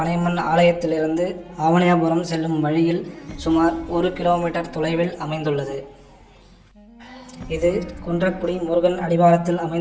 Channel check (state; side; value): identical; both; correlation 1.00